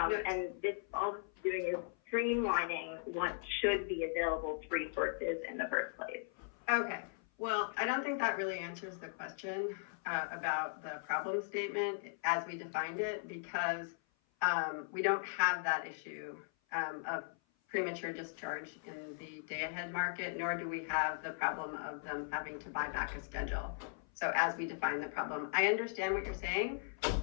And this, all this is doing is streamlining what should be available to resources in the first place. Okay. Well, I don't think that really answers the question about the problem statement as we defined it, because we don't have that issue of premature discharge in the day-ahead market, nor do we have the problem of them having to buy back a schedule. So as we define the problem, I understand what you're saying,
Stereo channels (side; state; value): right; silent; 52 dB below the other